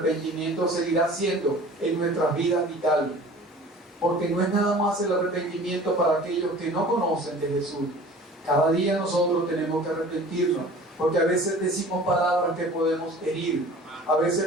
seguirá siendo en nuestras vidas vital, porque no es nada más el arrepentimiento para aquellos que no conocen de Jesús. Cada día nosotros tenemos que arrepentirnos, porque a veces decimos palabras que podemos herir, a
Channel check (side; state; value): both; normal; correlation 0.45